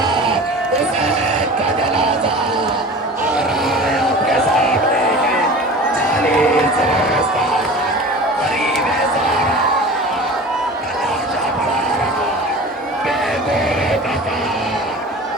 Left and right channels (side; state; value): both; normal; correlation 0.37